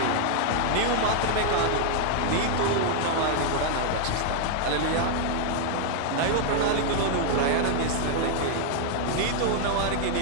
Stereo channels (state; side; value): different; both; correlation 0.00